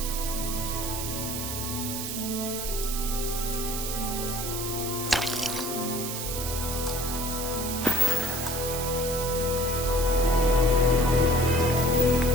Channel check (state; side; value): noise; right; hiss, 4 dB below the sound